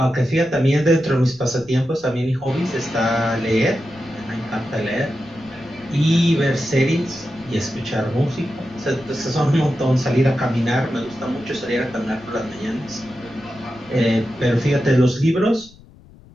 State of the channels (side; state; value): left; noise; rumble, 24 dB below the sound